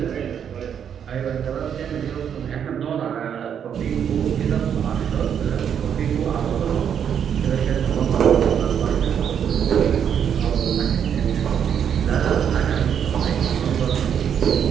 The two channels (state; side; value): quieter; left; 8.3 dB